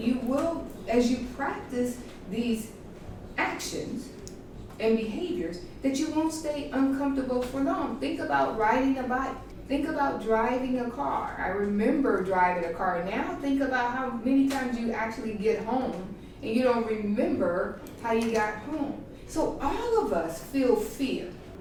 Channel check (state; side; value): identical; both; correlation 1.00